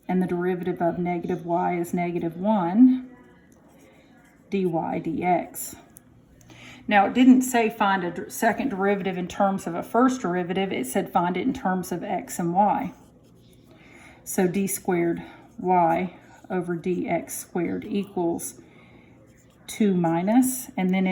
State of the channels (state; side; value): identical; both; correlation 1.00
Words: and the derivative of negative y is negative 1 dy dx. Now, it didn't say find a second derivative in terms of a first derivative. It said find it in terms of x and y. So d squared y over dx squared equals 2 minus, and then